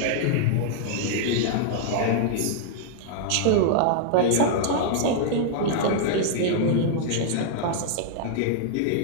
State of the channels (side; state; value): both; different; correlation -0.01